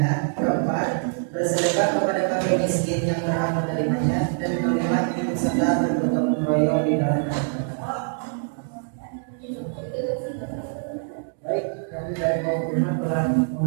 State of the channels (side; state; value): left; silent; 62 dB below the other